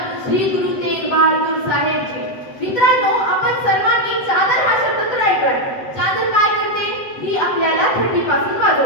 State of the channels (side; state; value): right; late; 7.8 ms